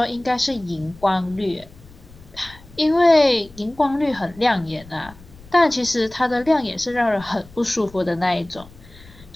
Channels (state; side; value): noise; left; rumble, 22 dB below the sound